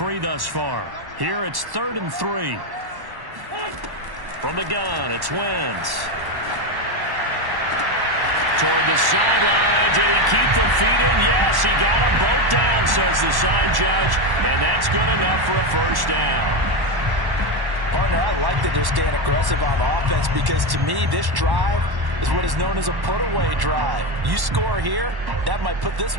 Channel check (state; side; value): late; left; 1.1 ms